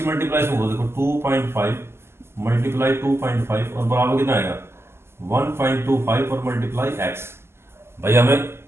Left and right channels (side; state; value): left; late; 0.12 ms